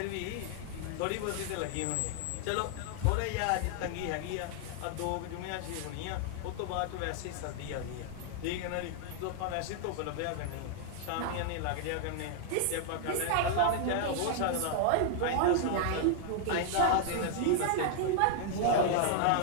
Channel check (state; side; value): different; both; correlation 0.00